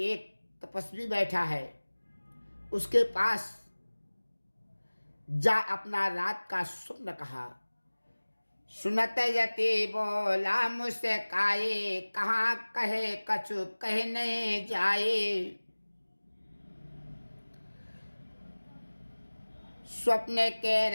एक तपस्वी बैठा है, उसके पास जा अपना रात का स्वप्न कहा। सुनत यति बोला मुझसे काये, कहाँ कहे कछु कहने जाए। स्वप्न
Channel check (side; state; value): both; inverted; correlation -1.00